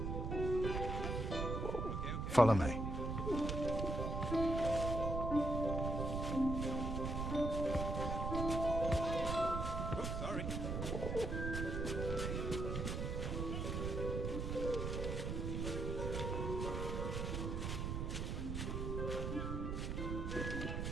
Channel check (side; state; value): right; noise; rumble, 1 dB below the sound